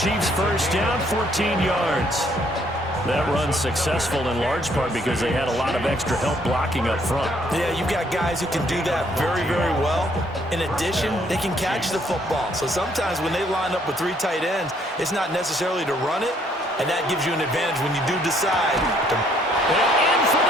first down, 14 yards. That run's successful in large part because they had a lot of extra help blocking up front. Yeah, you've got guys who can do that very, very well. In addition, they can catch the football. So sometimes when they line up with 3 tight ends, it's not necessarily to run it, and that gives you an advantage when you do decide to... And in for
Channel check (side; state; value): both; normal; correlation 0.66